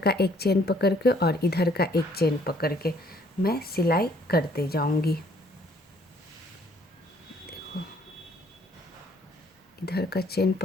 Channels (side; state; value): both; normal; correlation 0.62